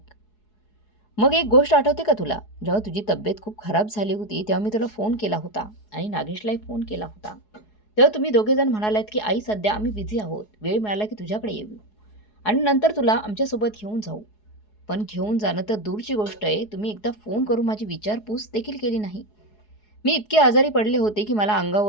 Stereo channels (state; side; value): late; right; 4.7 ms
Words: मग एक गोष्ट आठवते का तुला? जेव्हा तुझी तब्येत खूप खराब झाली होती तेव्हा मी तुला फोन केला होता आणि नागेशलाही फोन केला होता. तेव्हा तुम्ही दोघेजण म्हणालात की आई, सध्या आम्ही बिझी आहोत, वेळ मिळाला की तुझ्याकडे येऊ आणि नंतर तुला आमच्यासोबत घेऊन जाऊ. पण घेऊन जाणं तर दूरची गोष्ट आहे, तुम्ही एकदा फोन करून माझी विचारपूस देखील केली नाही. मी इतके आजारी पडले होते की मला